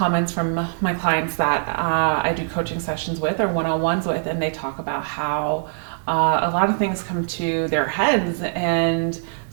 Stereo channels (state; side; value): silent; left; digital silence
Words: from my clients that I do coaching sessions with or one-on-ones with, and they talk about how a lot of things come to their heads and